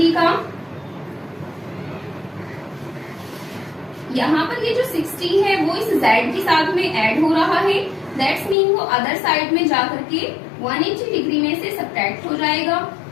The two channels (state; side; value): drops out; right; at 8.6 s